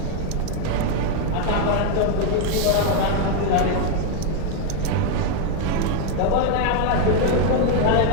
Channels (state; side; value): different; both; correlation 0.01